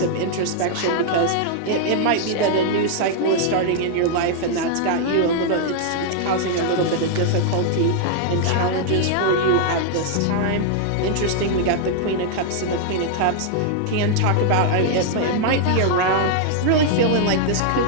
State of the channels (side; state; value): both; different; correlation -0.01